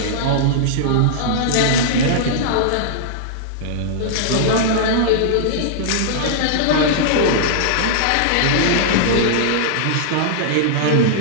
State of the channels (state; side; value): different; both; correlation -0.02